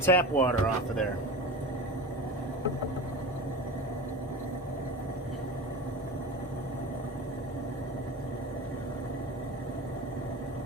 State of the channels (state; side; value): normal; both; correlation 0.29